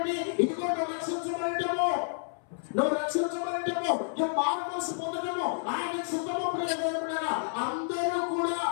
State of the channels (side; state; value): right; silent; 58 dB below the other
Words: ఇదిగో నువ్వు రక్షించబడటము, నువ్వు రక్షించబడటము, నువ్వు మారు మనసు పొందడము ఆయన చిత్తము. ప్రియదేవుడా, అందరూ